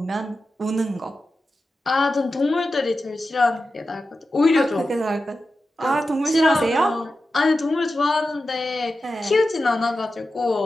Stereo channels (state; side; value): normal; both; correlation 0.92